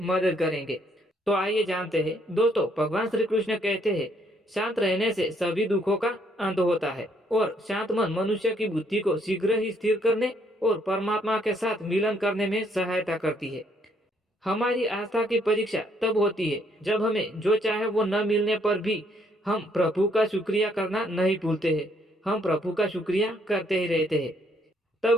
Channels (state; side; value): normal; both; correlation 0.69